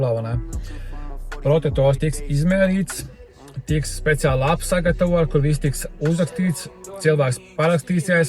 ne? Protektors tiks izmērīts, tiks speciāli apsagatavot, kur viss tiks uzrakstīts, cilvēks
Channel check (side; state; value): both; identical; correlation 1.00